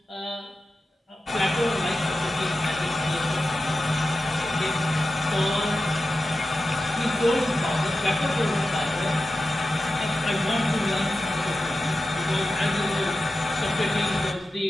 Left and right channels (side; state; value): both; normal; correlation 0.92